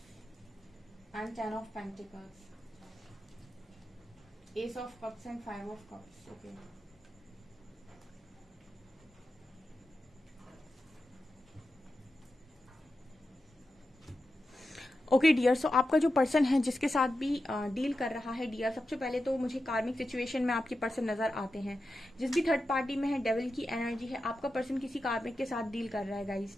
and 10 of pentacles, ace of cups and 5 of cups. Okay. Okay dear, so आपका जो person है जिसके साथ भी deal कर रहा है dear, सबसे पहले तो मुझे कार्मिक सिचुएशन में आपके पर्सन नजर आते हैं। जिस भी थर्ड पार्टी में है डेविल की एनर्जी है, आपका पर्सन किसी कार्मिक के साथ डील कर रहा है गाइस।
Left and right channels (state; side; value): normal; both; correlation 0.90